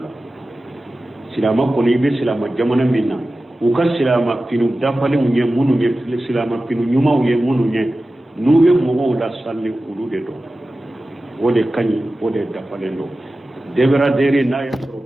silama koni be silama jamana minna u ka silama finu dafale munye munu ye silama finu nyuma ye munu ye nuwe mo da salli ulude do wode kanyi wode dafale do debera dere na ya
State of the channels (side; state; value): both; normal; correlation 0.95